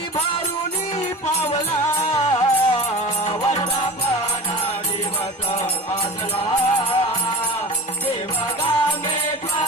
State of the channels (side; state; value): both; normal; correlation 0.36